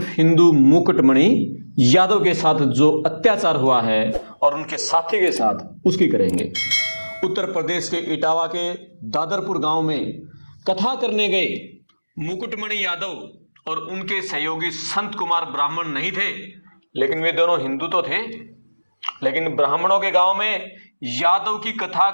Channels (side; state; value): both; inverted; correlation -1.00